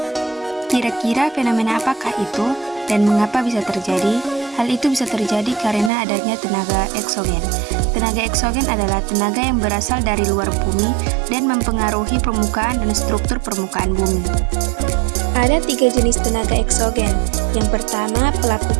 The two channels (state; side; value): drops out; left; at 5.9 s